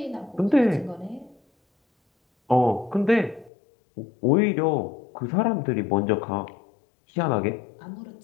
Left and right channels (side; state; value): right; drops out; at 3.5 s